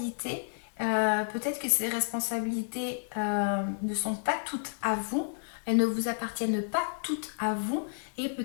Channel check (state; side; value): silent; right; digital silence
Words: Peut-être que ces responsabilités ne sont pas toutes à vous, elles ne vous appartiennent pas toutes à vous, et